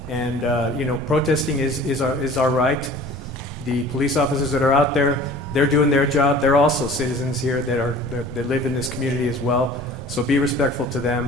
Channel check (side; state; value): both; normal; correlation 0.45